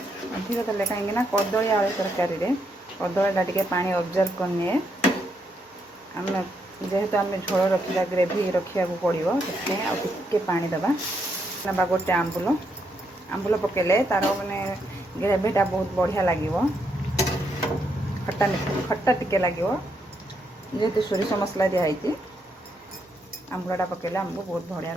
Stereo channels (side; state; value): both; normal; correlation 0.78